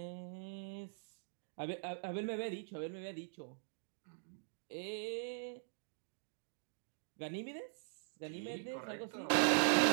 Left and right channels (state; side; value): silent; left; digital silence